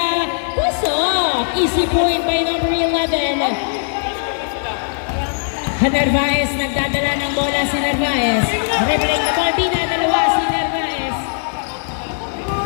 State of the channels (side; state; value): right; silent; digital silence